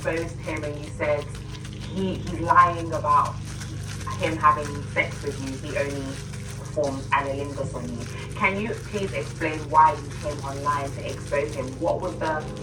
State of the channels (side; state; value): both; identical; correlation 1.00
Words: him and you said he's lying about him having sex with you, he only performs analingus on you. Can you please explain why you came online to expose him? What was the